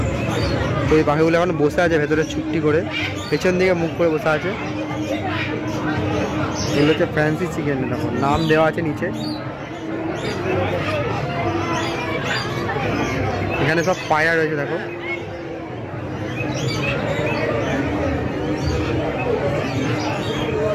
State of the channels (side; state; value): both; identical; correlation 1.00